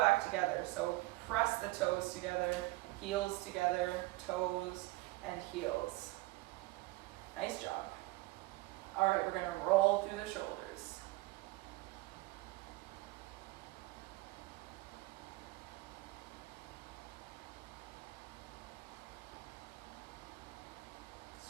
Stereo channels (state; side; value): quieter; left; 20.9 dB